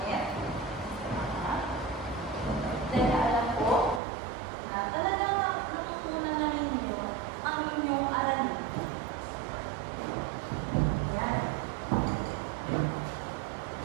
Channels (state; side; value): drops out; left; at 4.0 s